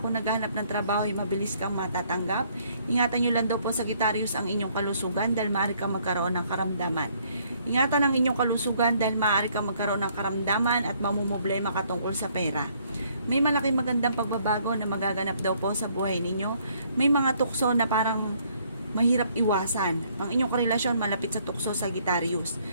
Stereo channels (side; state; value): both; inverted; correlation -0.66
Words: naghahanap ng trabaho ay mabilis kang matatanggap. Ingatan nyo lang daw po Sagittarius ang inyong kalusugan dahil maaari kang magkaroon ng karamdaman. Ingatan ang inyong kalusugan dahil maaari kang magkaroon ng karamdaman at mamumblema ka tungkol sa pera. May malaking magandang pagbabago na magaganap daw po sa buhay ninyo. May mga tukso na parang mahirap iwasan. Ang inyong karelasyon malapit sa tukso Sagittarius.